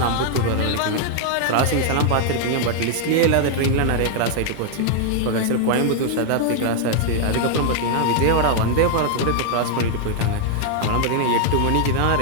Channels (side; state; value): both; different; correlation 0.00